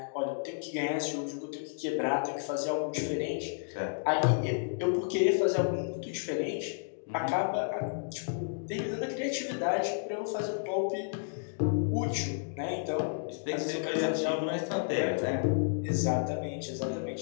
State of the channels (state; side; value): silent; right; digital silence